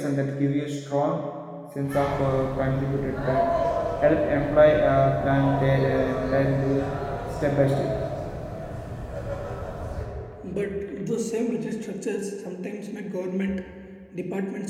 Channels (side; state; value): both; identical; correlation 1.00